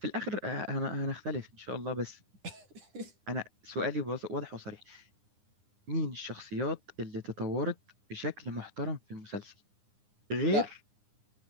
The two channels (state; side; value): late; left; 9.8 ms